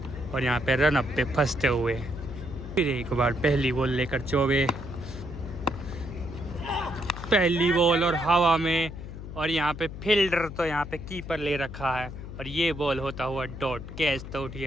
और यहाँ पे रन अप पे फंसते हुए। फिर एक बार पहली बॉल लेकर चौबे, पहली बॉल और हवा में, और यहाँ पे फील्डर तो यहाँ पे कीपर ले रखा है, और ये बॉल होता हुआ डॉट। कैच तो उठ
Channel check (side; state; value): left; noise; hum, 10 dB below the sound